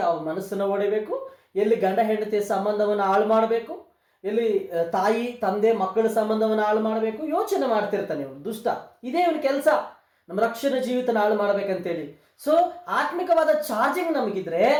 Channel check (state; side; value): identical; both; correlation 1.00